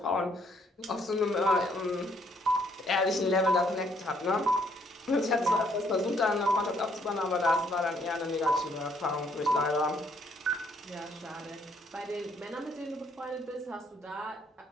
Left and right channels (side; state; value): both; normal; correlation 0.68